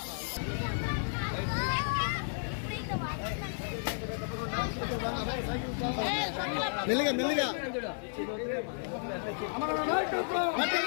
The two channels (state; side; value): silent; right; 56 dB below the other